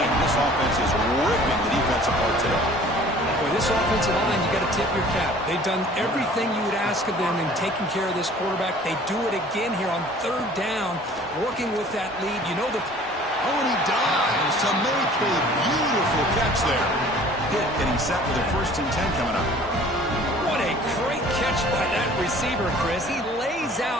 This offense is ripping the defense apart today. Boy, this offensive line, you got to tip your cap. They've done everything you would ask of them in taking care of this quarterback. They do it again here on 3rd down, working with that lead. You know the... Oh, and he dives to make a beautiful catch there. Hit, getting set for the 1st and 10 coming up. What a great catch by that receiver, Chris. He lays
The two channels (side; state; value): both; normal; correlation 0.50